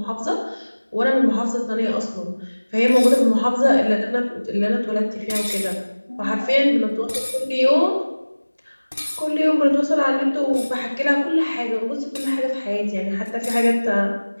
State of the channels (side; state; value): both; inverted; correlation -1.00